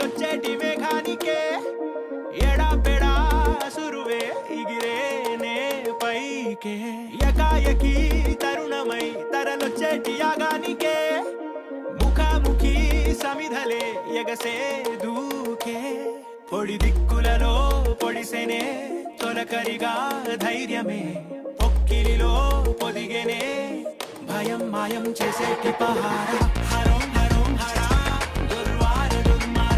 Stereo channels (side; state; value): both; identical; correlation 1.00